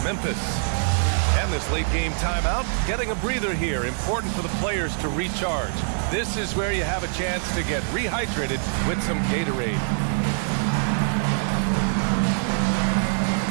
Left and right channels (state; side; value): silent; left; digital silence